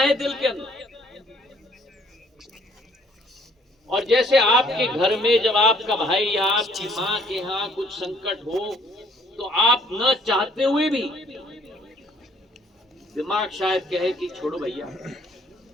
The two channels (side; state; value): both; normal; correlation 0.62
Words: दिल के अंदर। और जैसे आपके घर में जब आपका भाई या आपकी मां के यहां कुछ संकट हो तो आप न चाहते हुए भी दिमाग शायद कहे कि छोड़ो भैया,